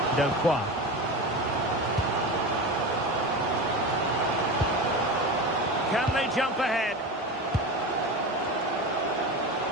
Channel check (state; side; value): normal; both; correlation 0.26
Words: Delcroix. Can they jump ahead?